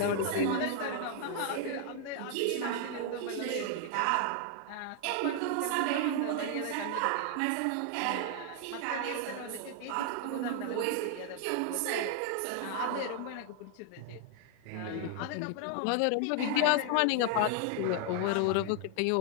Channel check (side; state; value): both; different; correlation 0.00